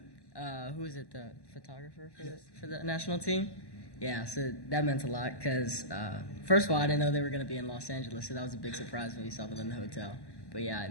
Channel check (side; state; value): right; late; 1.1 ms